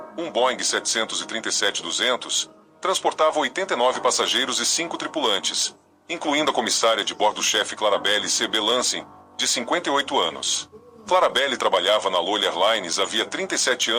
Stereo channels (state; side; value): identical; both; correlation 1.00